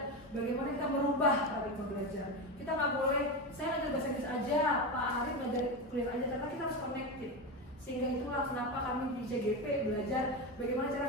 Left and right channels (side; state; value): both; normal; correlation 0.17